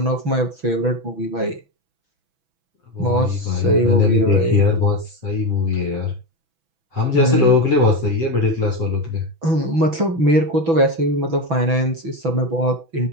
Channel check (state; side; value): late; left; 6.1 ms